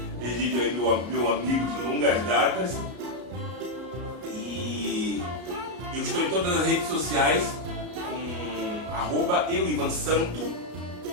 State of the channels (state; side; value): late; left; 33 ms